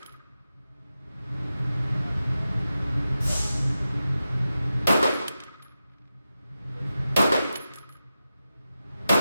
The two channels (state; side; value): inverted; both; correlation -0.92